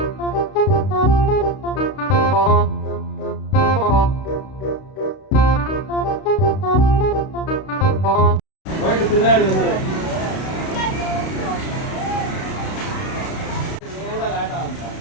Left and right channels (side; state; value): right; late; 32 ms